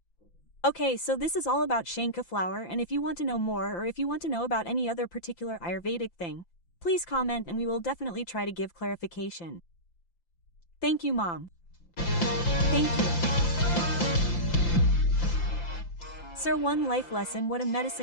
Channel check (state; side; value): late; right; 5.8 ms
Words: Okay, so this is all about Shankhu flower, and if you want to know more or if you want to know about any other particular Ayurvedic thing, please comment and we will definitely try to give clarification. Thank you, Mom. Thank you. Sir, one life lesson: what a